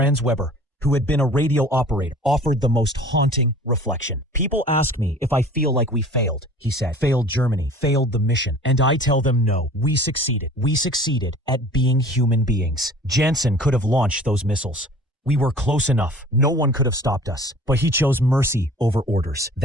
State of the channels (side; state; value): both; normal; correlation 0.46